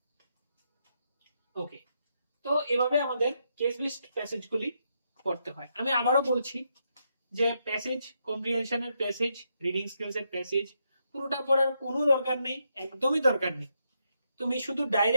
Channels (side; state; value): both; inverted; correlation -0.80